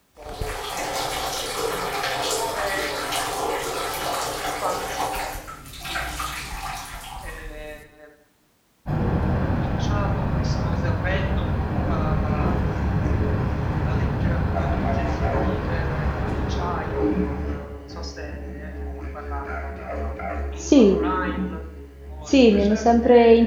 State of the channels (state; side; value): identical; both; correlation 1.00